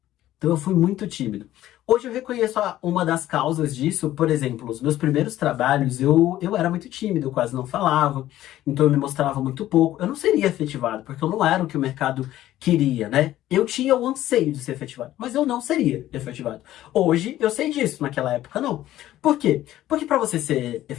Então eu fui muito tímido. Hoje eu reconheço uma das causas disso. Por exemplo, os meus primeiros trabalhos, eu era muito tímido, eu quase não falava, então eu me mostrava muito pouco. Eu não seria efetivado, porque eu não era o que o mercado queria, né? Eu tinha o anseio de ser efetivado, mas eu não seria efetivado. Hoje eu sei disso, naquela época não. Por quê? Porque para você ser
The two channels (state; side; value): quieter; right; 13.9 dB